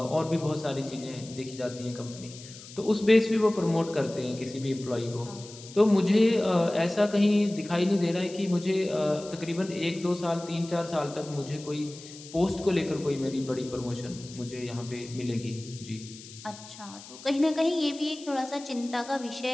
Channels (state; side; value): noise; left; hiss, 17 dB below the sound